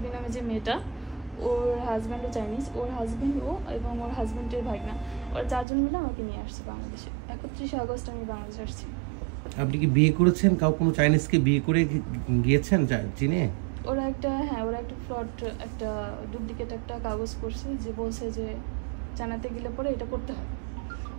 নামে যে মেয়েটা, ওর হাজব্যান্ডও চাইনিজ, ওর হাজব্যান্ড ও এবং ওর হাজব্যান্ডের ভাগনা, ওরা 4 জন মিলে আমাকে নিয়ে আসছে বাংলাদেশে। 31 আগস্ট আমি বাংলাদেশে আসছি। আপনি কি বিয়ে করেছেন? কোনো চাইনিজকে বিয়ে করে গিয়েছেন চীনে? ওরা একটা ফ্রড, একটা ডুপ্লিকেট একটা কাগজ করছে, যে বলছে যে চায়নাতে গেলে পরে এটা করতে হয়,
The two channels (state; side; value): drops out; left; at 5.7 s